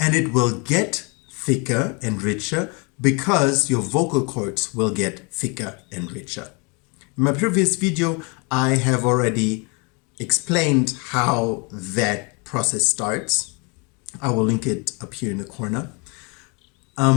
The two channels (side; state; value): right; quieter; 31.9 dB